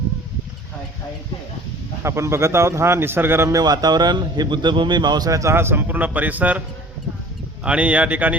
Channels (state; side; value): normal; both; correlation 0.46